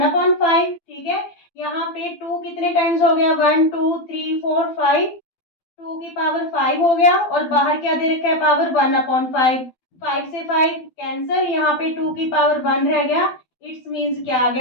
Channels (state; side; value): late; right; 12 ms